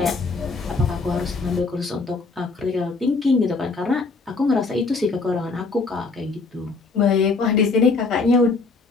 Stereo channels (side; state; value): right; quieter; 4.0 dB